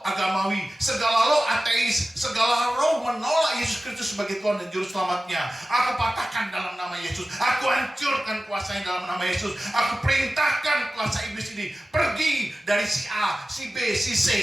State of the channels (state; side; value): normal; both; correlation 0.95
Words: agamawi, segala roh ateis, segala roh menolak Yesus Kristus sebagai Tuhan dan Juru Selamatnya, aku patahkan dalam nama Yesus. Aku hancurkan kuasanya dalam nama Yesus. Aku perintahkan kuasa iblis ini pergi dari si A, si B, si